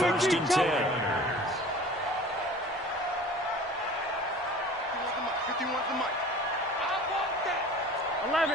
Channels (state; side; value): normal; both; correlation 0.43